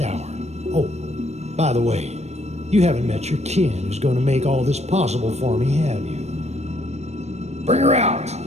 hour. Oh, by the way, you haven't met your kin who's going to make all this possible for me, have you? Bring her out!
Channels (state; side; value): late; left; 0.32 ms